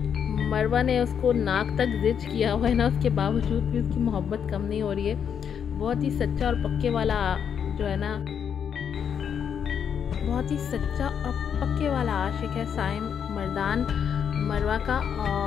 मरवा ने उसको नाक तक जिच किया हुआ है ना, उसके बावजूद भी उसकी मोहब्बत कम नहीं हो रही है। बहुत ही सच्चा और पक्के वाला जो है ना, बहुत ही सच्चा और पक्के वाला आशिक है साइम मर्दान मरवा का।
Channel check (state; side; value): quieter; right; 7.8 dB